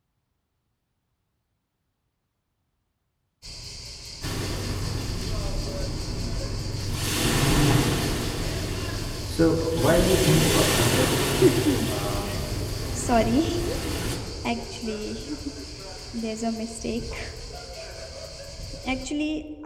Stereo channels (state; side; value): identical; both; correlation 1.00